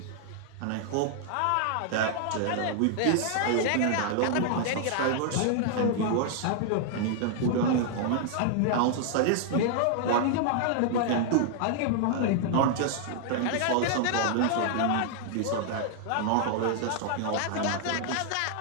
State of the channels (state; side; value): different; both; correlation -0.01